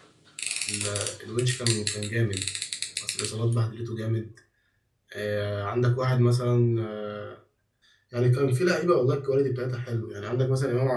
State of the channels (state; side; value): identical; both; correlation 1.00